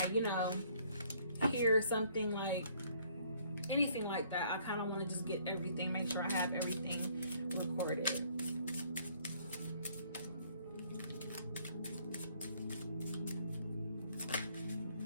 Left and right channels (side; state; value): both; inverted; correlation -0.63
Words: hear something like anything like that, I kind of want to just get everything, make sure I have everything recorded.